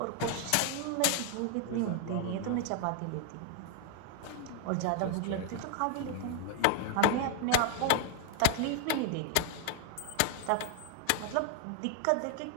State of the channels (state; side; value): different; both; correlation 0.00